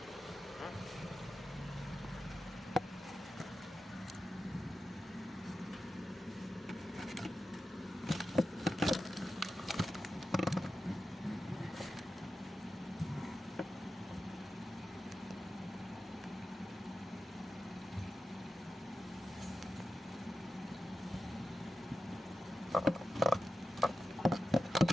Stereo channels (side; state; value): both; normal; correlation 0.92